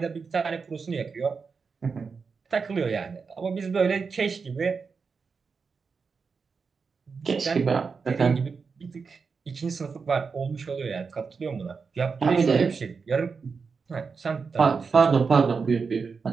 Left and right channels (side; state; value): left; quieter; 5.2 dB